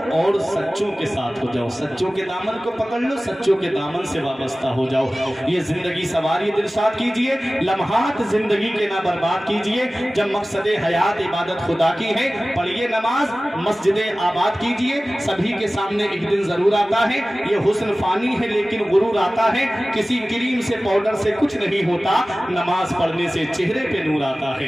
और सच्चों के साथ हो जाओ, सच्चों के दामन को पकड़ लो, सच्चों के दामन से वाबस्ता हो जाओ। ये जिंदगी सवारी दिलशाद कीजिए, लम्हात जिंदगी के ना बर्बाद कीजिए। जब मकसद हयात इबादत खुदा की है, पढ़िए नमाज, मस्जिदें आबाद कीजिए। सभी के सामने एक दिन जरूर आता है, ये हुस्न फानी है लेकिन गुरूर आता है, किसी क्रीम से पाउडर से कुछ नहीं होता, नमाज पढ़ने से चेहरे पे नूर आता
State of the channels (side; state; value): both; normal; correlation 0.97